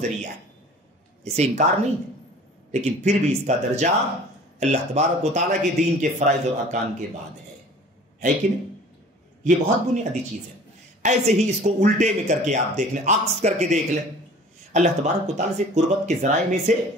ذریعہ ہے، اسے انکار نہیں ہے، لیکن پھر بھی اس کا درجہ اللہ تبارک و تعالیٰ کے دین کے فرائض اور ارکان کے بعد ہے کہ نہیں؟ یہ بہت بنیادی چیز ہے۔ ایسے ہی اس کو الٹے میں کر کے آپ دیکھ لیں، عکس کر کے دیکھ لیں، اللہ تبارک و تعالیٰ سے قربت کے ذرائع میں سے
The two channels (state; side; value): normal; both; correlation 0.46